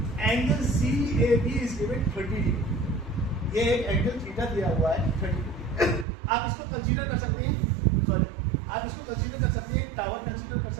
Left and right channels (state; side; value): drops out; left; at 6.1 s